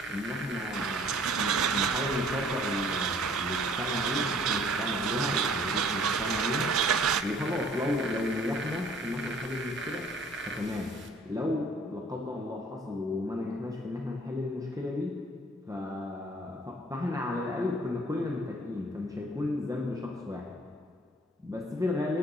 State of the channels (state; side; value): normal; both; correlation 0.55